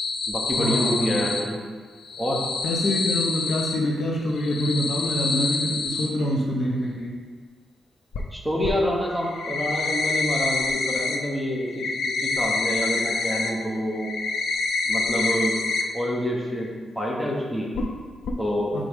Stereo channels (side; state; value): both; normal; correlation 0.80